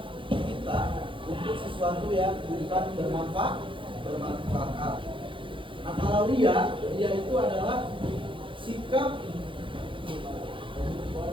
kita untuk sesuatu yang bukan bermanfaat. Nah, kalau ria itu adalah sikap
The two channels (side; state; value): left; late; 0.25 ms